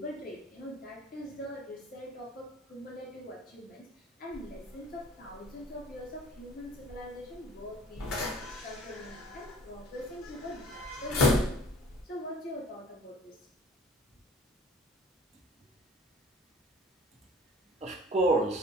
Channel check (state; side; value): normal; both; correlation 0.49